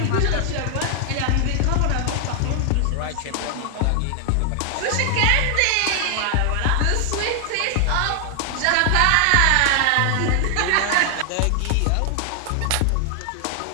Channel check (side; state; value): both; different; correlation 0.00